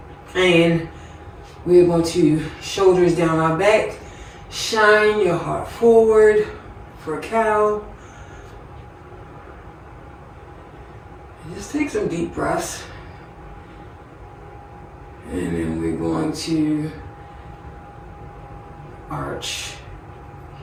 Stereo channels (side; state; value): both; identical; correlation 1.00